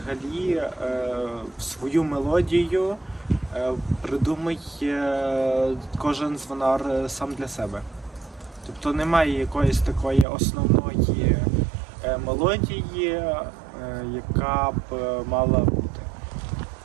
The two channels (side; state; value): left; drops out; at 10.2 s